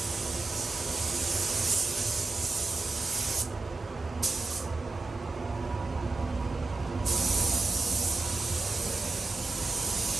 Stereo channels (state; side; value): quieter; left; 3.6 dB